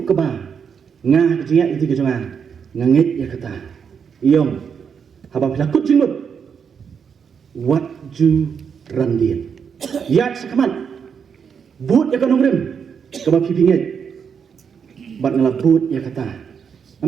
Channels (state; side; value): quieter; left; 6.8 dB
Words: ke ba nga ke jingat enti ke jonga ngangit ya kata. Yong haba pilakut jimut. What ju randian. Ya sakman. But ya kanong rim kaba pipinget bat ngala but ya kata